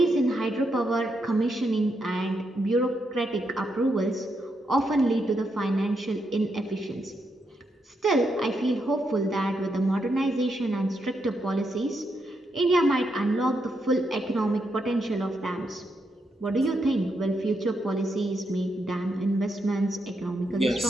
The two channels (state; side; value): normal; both; correlation 0.81